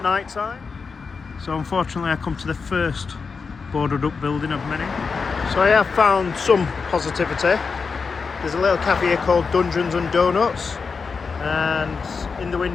night time. So unfortunately I come to the first boarded up building of many. So I have found some positivity. There's a little cafe here called Dungeons and Donuts, and in the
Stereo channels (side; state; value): right; quieter; 5.1 dB